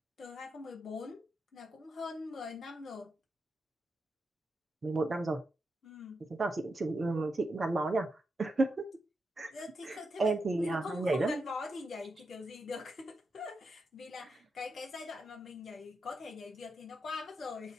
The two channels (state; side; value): normal; both; correlation 0.85